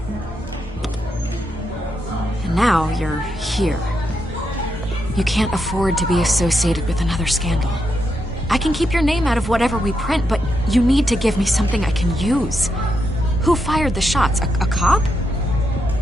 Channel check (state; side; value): normal; both; correlation 0.83